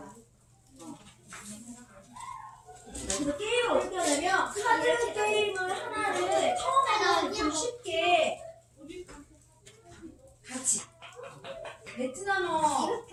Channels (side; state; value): both; identical; correlation 1.00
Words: 그래서 게임을 어떻게 하냐면 카드 게임을 하나를 처음에는 좀 쉽게 같이 베트남어를